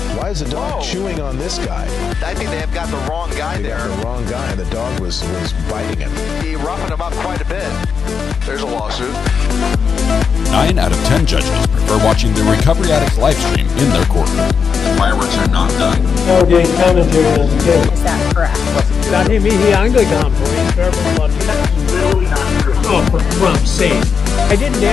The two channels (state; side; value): quieter; right; 6.2 dB